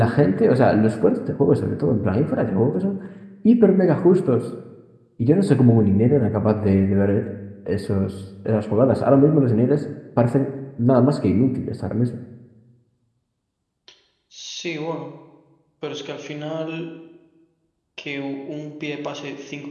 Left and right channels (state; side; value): identical; both; correlation 1.00